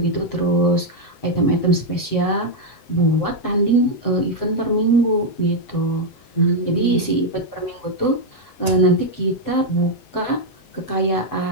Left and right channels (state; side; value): late; right; 7.8 ms